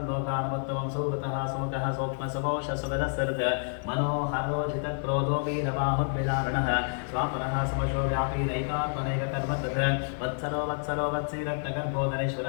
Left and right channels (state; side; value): silent; right; 59 dB below the other